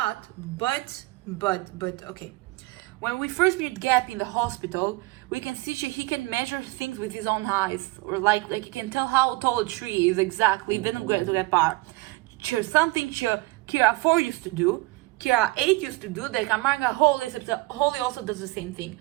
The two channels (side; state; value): left; quieter; 22.5 dB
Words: but okay. When we first meet Gap in the hospital, we can see he can measure things with his own eyes, or like he can tell how tall a tree is exactly. Didn't go to that part. Something Kira 4 used to do, Kira 8 used to do, that Kamanga Holy, except that Holy also does the same thing.